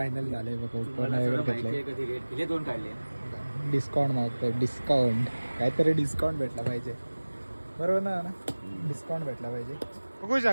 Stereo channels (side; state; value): both; inverted; correlation -1.00